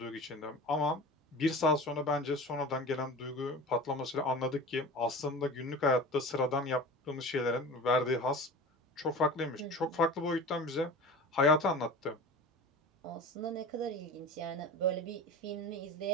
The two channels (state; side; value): normal; both; correlation 0.35